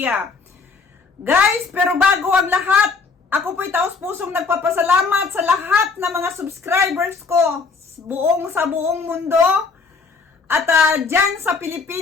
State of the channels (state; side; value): quieter; right; 4.7 dB